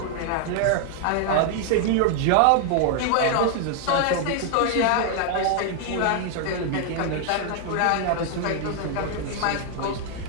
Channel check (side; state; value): both; different; correlation 0.00